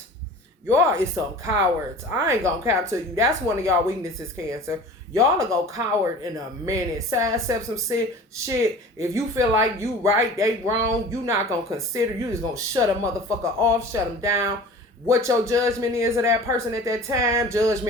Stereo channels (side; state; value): both; normal; correlation 0.41